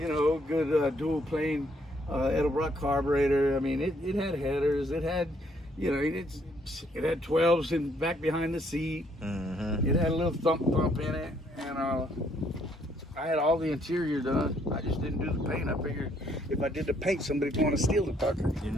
know, good dual plane Edelbrock carburetor. I mean, it had headers. It had, you know, it had 12s in back behind the seat. Mm-hmm. It had a little thump in it, and I had all the interior done. I just didn't do the paint. I figured if I did the paint, somebody'd want to steal the fucker. You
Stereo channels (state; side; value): normal; both; correlation 0.68